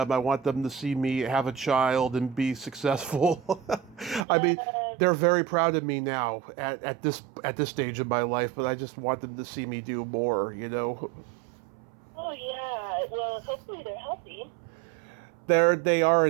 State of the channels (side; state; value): left; drops out; at 4.2 s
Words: I want them to see me have a child and be successful. I mean, they're very proud of me now at this stage of my life, but I just want them to see me do more. Oh yeah. Well, hopefully they're healthy. They are